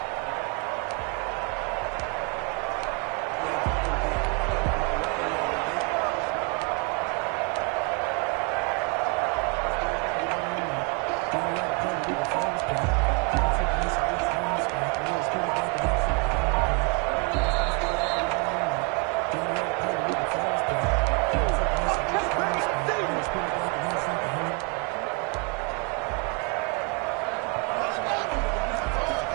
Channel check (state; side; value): quieter; left; 32.3 dB